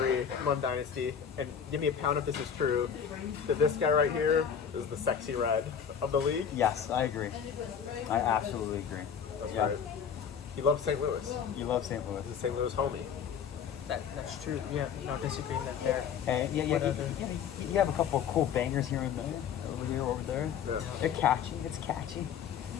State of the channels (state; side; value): quieter; right; 7.7 dB